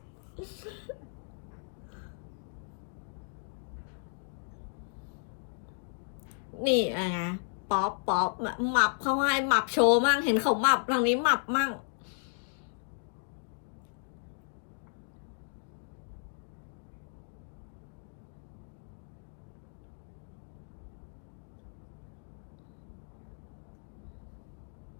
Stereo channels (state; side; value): silent; right; digital silence